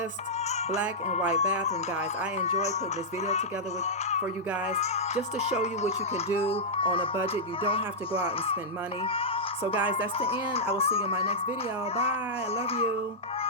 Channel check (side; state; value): both; normal; correlation -0.10